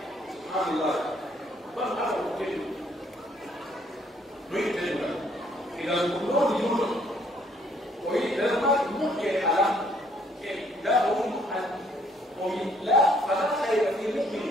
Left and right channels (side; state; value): both; normal; correlation 0.65